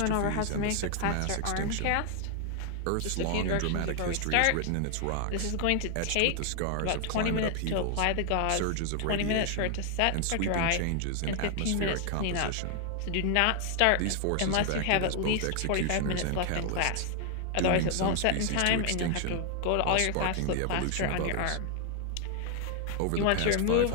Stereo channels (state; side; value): different; both; correlation 0.00